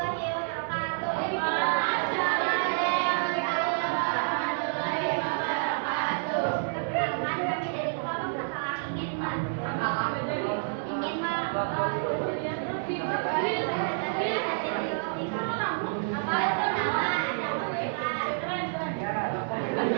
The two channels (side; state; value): left; silent; 59 dB below the other